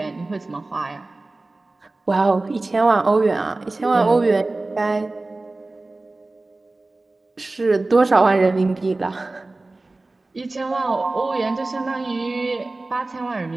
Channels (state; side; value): quieter; left; 3.1 dB